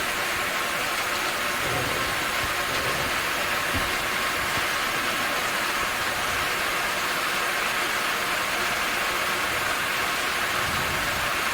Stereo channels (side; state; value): both; identical; correlation 1.00